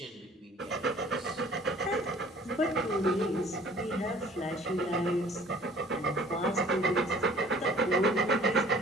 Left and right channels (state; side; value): normal; both; correlation 0.52